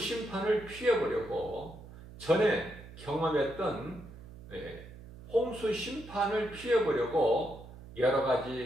피해보려고 전에 경험했던 홍수 심판을 피해보려고 여러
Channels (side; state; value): right; noise; hum, 17 dB below the sound